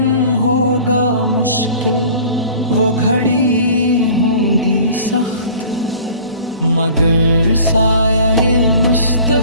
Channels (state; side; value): inverted; both; correlation -0.46